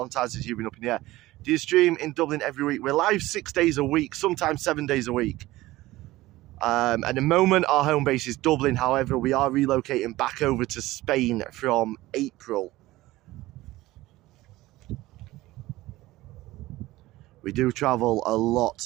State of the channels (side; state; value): left; quieter; 17.7 dB